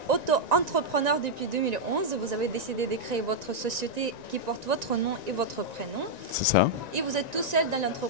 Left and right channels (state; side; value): late; left; 1.9 ms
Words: auto-entrepreneur depuis 2011. Vous avez décidé de créer votre société qui porte votre nom et votre prénom. C'est ça. Et vous êtes tout seul dans